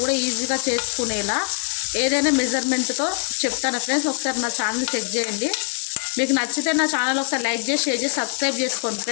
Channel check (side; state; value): right; silent; 59 dB below the other